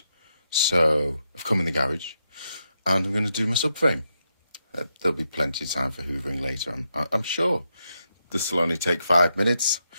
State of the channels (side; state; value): both; inverted; correlation -0.83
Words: So I've come in the garage and I'm going to do my subframe. There'll be plenty of time for hoovering later, I'm sure. This will only take 5 minutes.